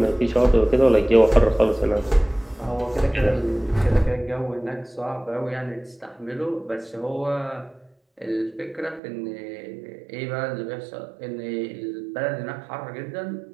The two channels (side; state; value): left; drops out; at 9.0 s